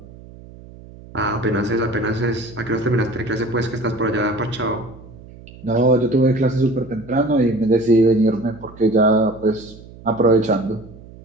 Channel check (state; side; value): noise; right; hum, 19 dB below the sound